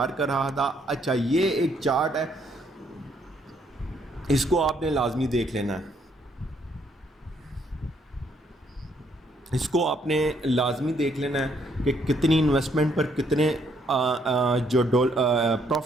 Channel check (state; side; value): normal; both; correlation 0.70